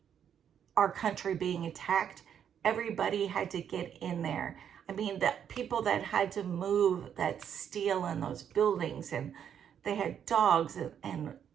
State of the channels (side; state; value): left; quieter; 8.7 dB